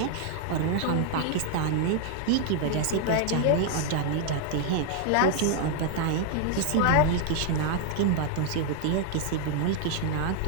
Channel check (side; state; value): both; different; correlation 0.00